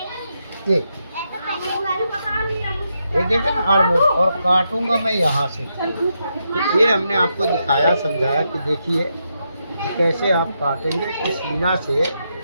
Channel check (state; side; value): inverted; both; correlation -0.83